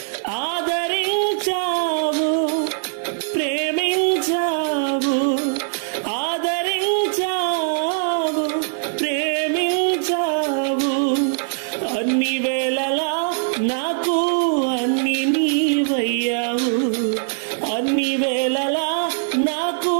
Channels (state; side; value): silent; left; digital silence